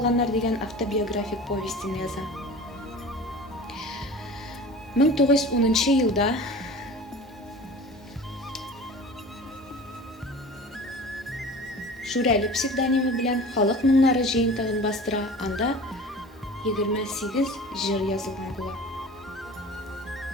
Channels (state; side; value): normal; both; correlation 0.39